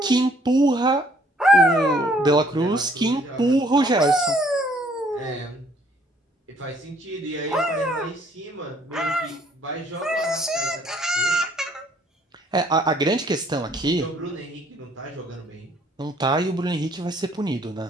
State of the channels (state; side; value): normal; both; correlation 0.63